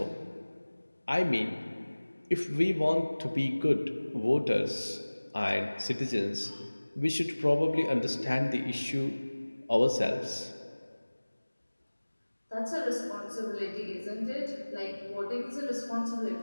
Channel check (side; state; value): both; inverted; correlation -1.00